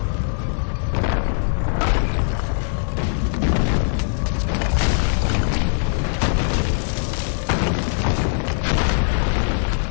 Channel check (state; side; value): silent; right; digital silence